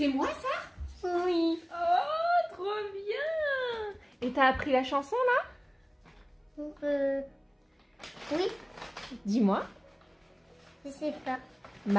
moi ça? Oui. Oh, trop bien! Et t'as appris la chanson là? Oui, Dis-moi. je sais pas.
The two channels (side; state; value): both; identical; correlation 1.00